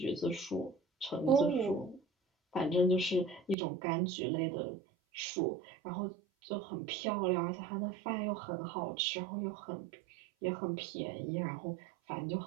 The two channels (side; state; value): left; drops out; at 3.6 s